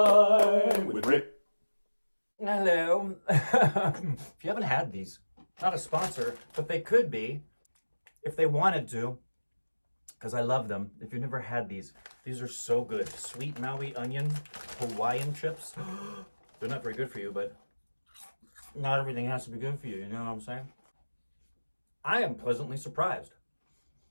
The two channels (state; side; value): inverted; both; correlation -1.00